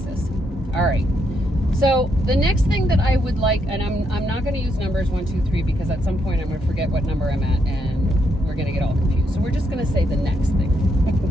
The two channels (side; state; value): both; normal; correlation 0.78